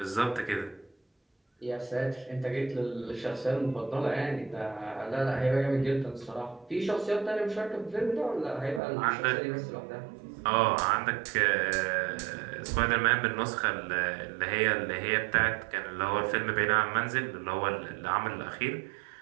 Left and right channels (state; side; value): drops out; left; at 8.8 s